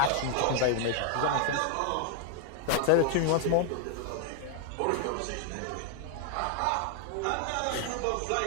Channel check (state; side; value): different; both; correlation 0.00